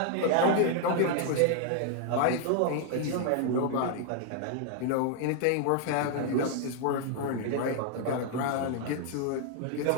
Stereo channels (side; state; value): both; different; correlation 0.00